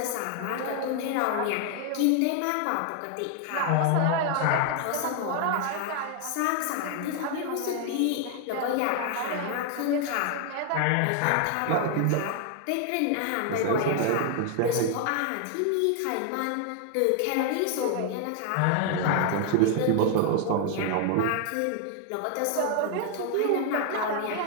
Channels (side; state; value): both; different; correlation 0.00